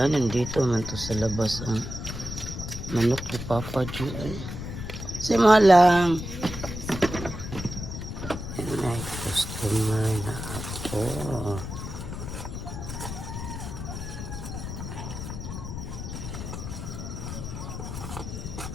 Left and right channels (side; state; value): left; noise; rumble, 7 dB below the sound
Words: nandito man to sa labas ang manok ni Papa Ju. Say mo lang. May customer na ako.